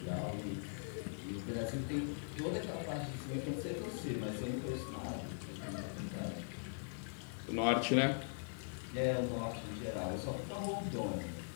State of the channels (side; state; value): right; silent; 50 dB below the other